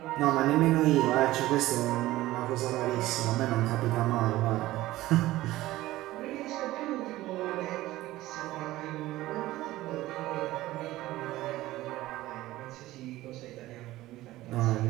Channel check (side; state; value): left; quieter; 16.7 dB